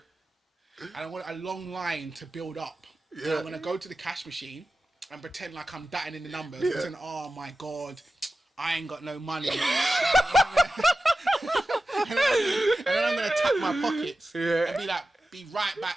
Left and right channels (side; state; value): both; normal; correlation 0.94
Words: And I want a long line to build up. Yeah. And I'm gonna go to the cash machine and pretend like I'm datting in the numbers. Yeah. Pretend, oh my god, I ain't got no money. And then I'm gonna tap my pockets and be like, be right